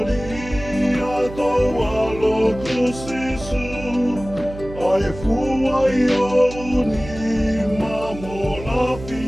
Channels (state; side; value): noise; right; hum, 13 dB below the sound